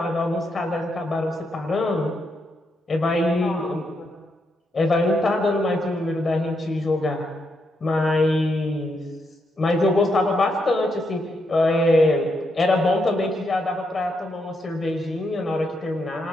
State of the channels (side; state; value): both; normal; correlation 0.80